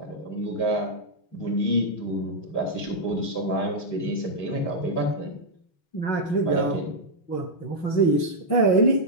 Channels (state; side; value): late; right; 6.2 ms